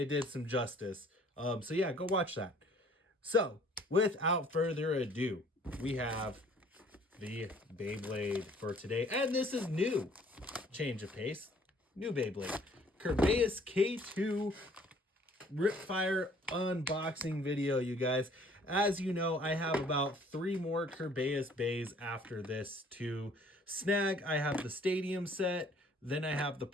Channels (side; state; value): both; normal; correlation 0.57